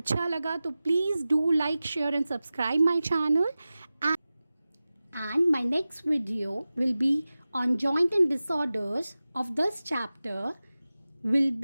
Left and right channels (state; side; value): inverted; both; correlation -0.96